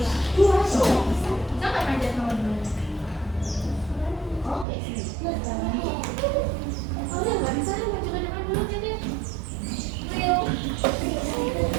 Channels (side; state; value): left; drops out; at 4.7 s